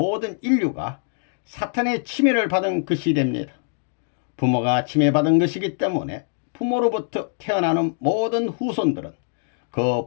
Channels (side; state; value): right; silent; digital silence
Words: 인류가 사탄의 침해를 받은 것이 됩니다. 부모가 침해받은 것이기 때문에 부모로부터 태어나는 모든 후손들은 그